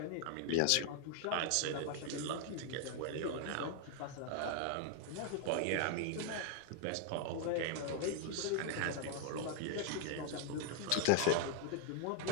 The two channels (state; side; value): different; both; correlation 0.00